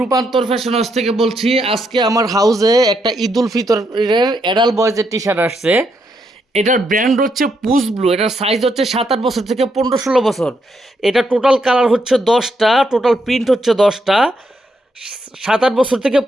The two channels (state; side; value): normal; both; correlation 0.78